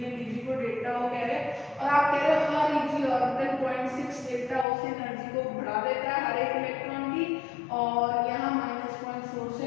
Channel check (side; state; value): right; drops out; at 4.7 s